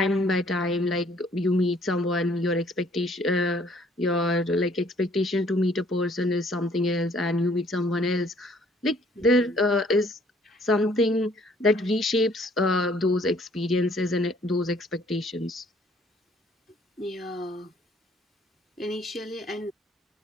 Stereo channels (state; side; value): normal; both; correlation 0.61